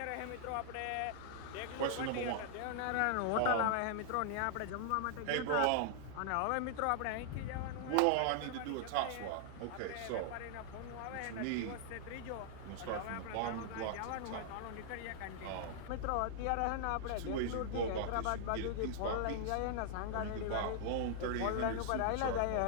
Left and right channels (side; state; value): both; different; correlation -0.01